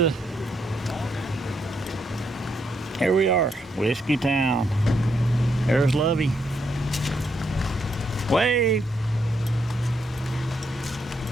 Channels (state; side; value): normal; both; correlation 0.77